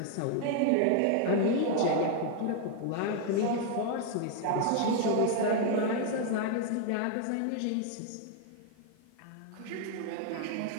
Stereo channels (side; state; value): both; different; correlation 0.00